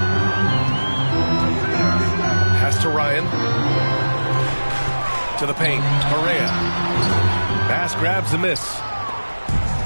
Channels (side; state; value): both; inverted; correlation -1.00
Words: Pass to Ryan. To the paint. Correa. Bass grabs the miss.